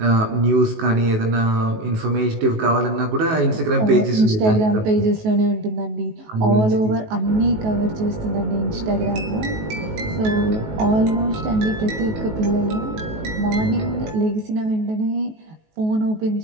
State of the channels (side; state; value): left; late; 19 ms